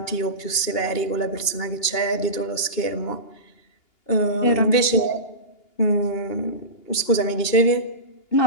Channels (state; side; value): late; right; 2.8 ms